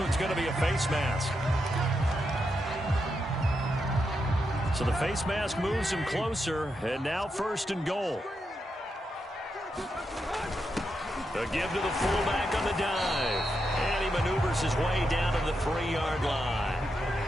going to be a face mask. So the face mask moves him closer, and now 1st and goal. A give to the fullback on the dive. And he maneuvers his way down to the 3-yard line.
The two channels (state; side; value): normal; both; correlation 0.84